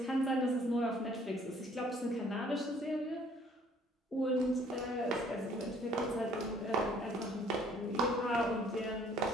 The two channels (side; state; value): both; normal; correlation 0.59